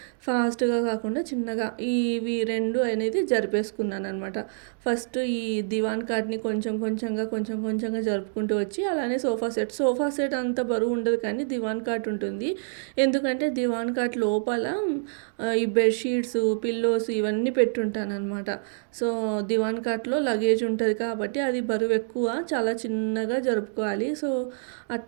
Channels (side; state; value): left; silent; digital silence